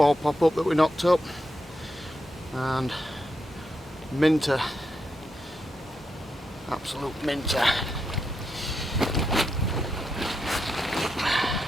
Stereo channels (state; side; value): normal; both; correlation 0.84